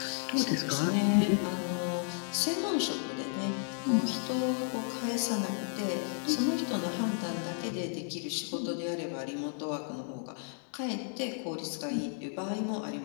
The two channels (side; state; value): right; silent; 56 dB below the other